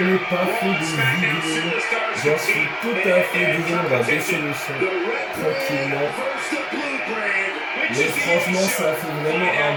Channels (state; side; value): identical; both; correlation 1.00